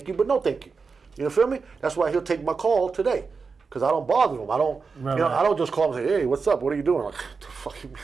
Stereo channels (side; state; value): left; quieter; 4.9 dB